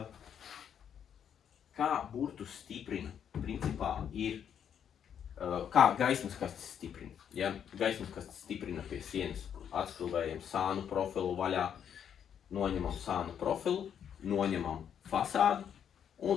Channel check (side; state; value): right; quieter; 8.6 dB